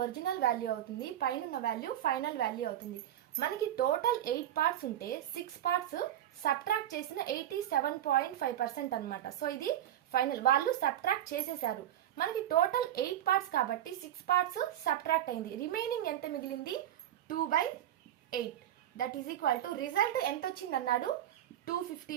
ఒరిజినల్ వాల్యూ అవుతుంది, పైన ఉన్న వాల్యూ ఫైనల్ వాల్యూ అవుతుంది. మనకి టోటల్ 8 పార్ట్స్ ఉంటే 6 పార్ట్స్ సబ్ట్రాక్ట్ చేసిన 87.5% అన్నమాట. సో ఇది ఫైనల్, వాళ్ళు సబ్ట్రాక్ట్ చేసేసారు. మనకి టోటల్ 8 పార్ట్స్ కాబట్టి 6 పార్ట్స్ సబ్ట్రాక్ట్ అయింది. రిమైనింగ్ ఎంత మిగిలింది? 2/8. That is equal to result ఎంత వచ్చింది అన్నాడు? 250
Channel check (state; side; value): quieter; left; 11.8 dB